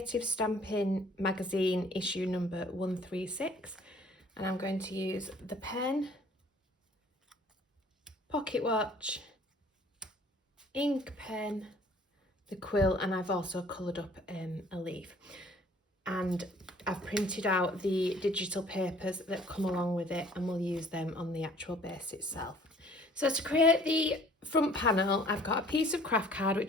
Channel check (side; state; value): both; normal; correlation 0.54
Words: Stamping magazine issue number 136. And I'm going to use the pen, pocket watch, ink pen, the quill, and I've also coloured up a leaf. And I've printed out the digital papers that come along with it, and we'll use them on the actual base itself. So to create the front panel, I've got a piece of craft card